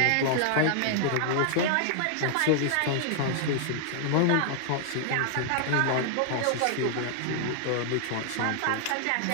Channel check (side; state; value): both; different; correlation 0.00